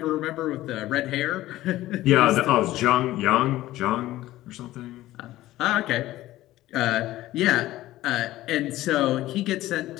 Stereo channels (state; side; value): quieter; right; 15.8 dB